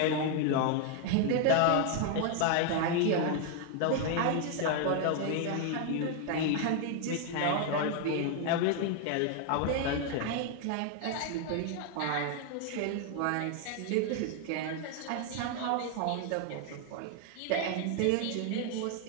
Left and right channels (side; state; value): both; different; correlation 0.00